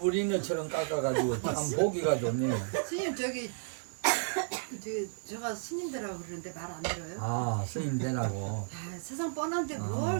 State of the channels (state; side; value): silent; left; digital silence